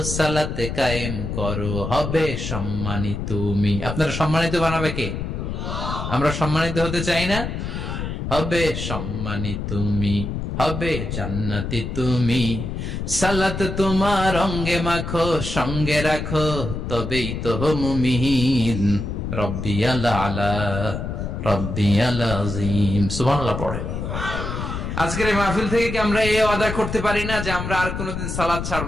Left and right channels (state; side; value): noise; left; rumble, 4 dB below the sound